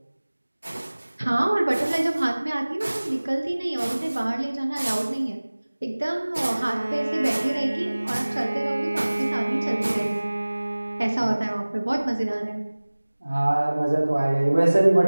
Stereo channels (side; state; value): both; inverted; correlation -1.00